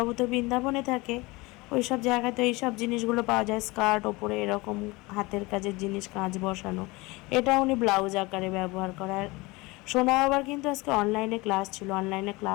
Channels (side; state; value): right; quieter; 23.3 dB